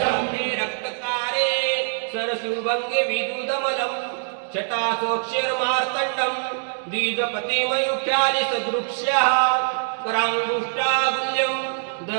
रक्तकारे सरसुभङ्गे विदुदमलं शटासोक्षरमार्तण्डं द्विजपतिमयुख्यालि सदृक्ष्यः कराङ्गुष्टागुल्यं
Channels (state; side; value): silent; left; digital silence